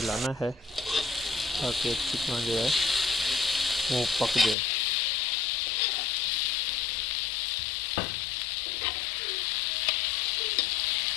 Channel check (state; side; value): drops out; right; at 4.5 s